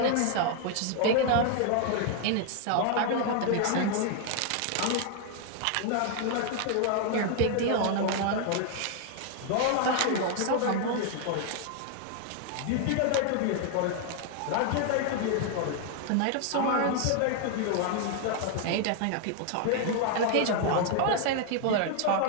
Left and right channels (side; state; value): both; different; correlation 0.00